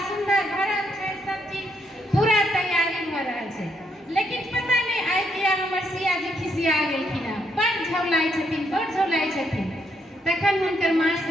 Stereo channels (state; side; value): normal; both; correlation 0.75